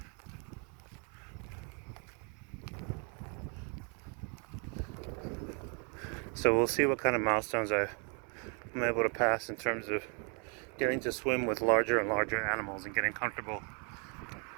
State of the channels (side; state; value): left; quieter; 37.0 dB